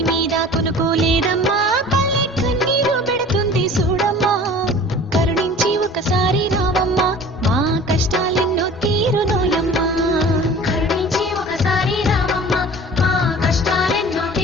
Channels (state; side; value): normal; both; correlation 0.43